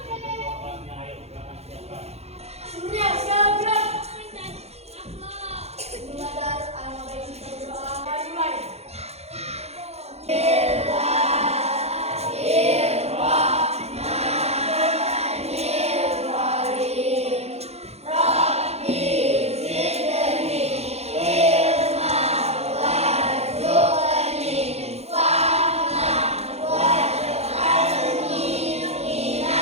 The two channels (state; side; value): late; left; 0.31 ms